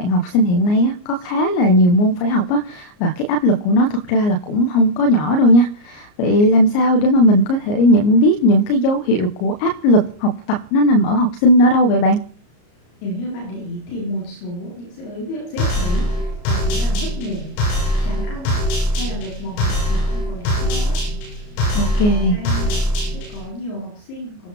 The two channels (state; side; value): late; right; 34 ms